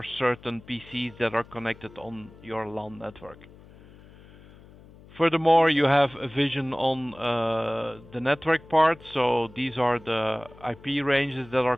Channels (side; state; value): left; noise; hum, 22 dB below the sound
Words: certain PCs that are connected on your LAN network. Furthermore, you have a vision on the network part. So these are the IP ranges that are